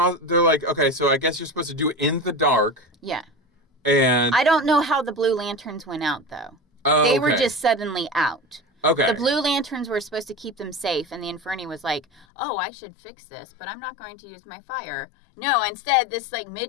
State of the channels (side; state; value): right; drops out; at 12.2 s